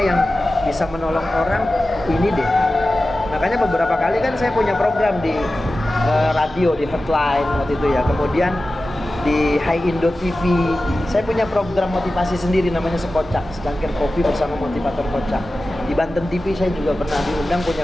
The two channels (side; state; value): both; normal; correlation 0.94